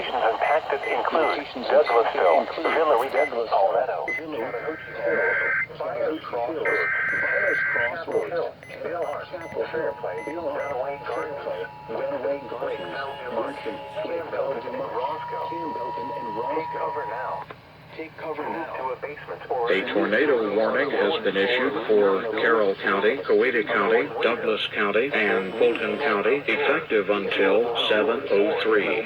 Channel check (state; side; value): identical; both; correlation 1.00